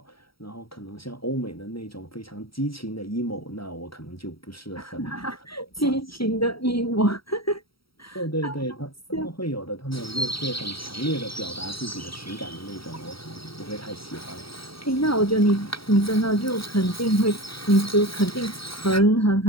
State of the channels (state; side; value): late; right; 0.75 ms